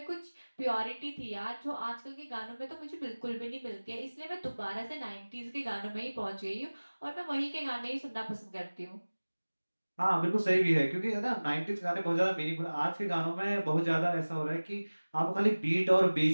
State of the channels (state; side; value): inverted; both; correlation -1.00